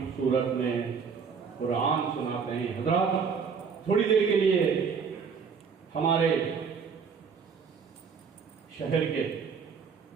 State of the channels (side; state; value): left; quieter; 6.0 dB